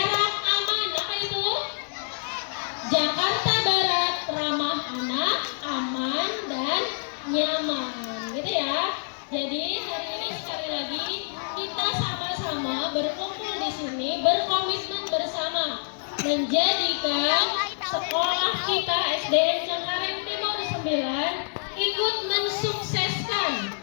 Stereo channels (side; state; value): right; silent; digital silence